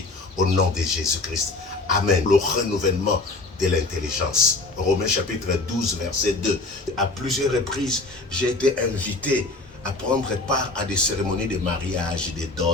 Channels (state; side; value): quieter; right; 3.3 dB